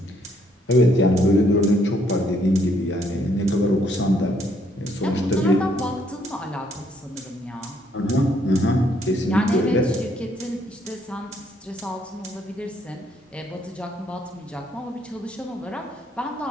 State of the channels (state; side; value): normal; both; correlation 0.69